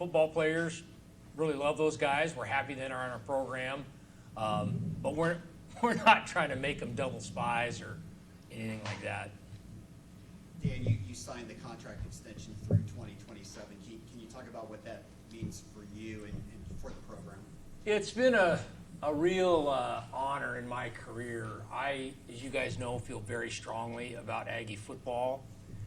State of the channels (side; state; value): both; identical; correlation 1.00